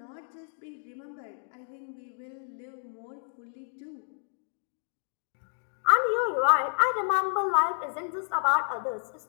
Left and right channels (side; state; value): right; silent; digital silence